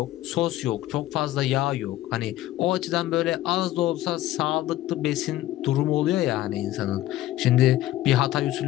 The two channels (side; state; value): right; quieter; 14.8 dB